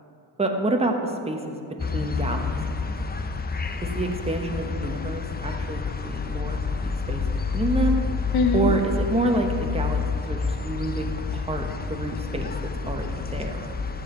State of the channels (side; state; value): both; normal; correlation 0.52